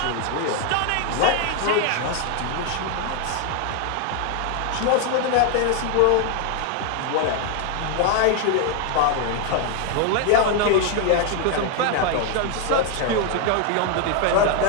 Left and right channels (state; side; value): different; both; correlation 0.00